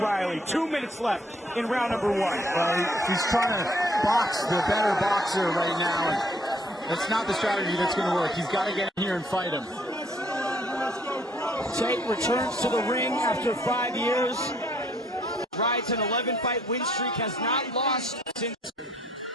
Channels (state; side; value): normal; both; correlation 0.64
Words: 2 minutes left in round number 1. He's trying to box the better boxer right now. That's not the strategy that's going to work. He's got to get in here and fight him. Tate returns to the ring after 5 years. Rides an 11-fight win streak, has not lost since.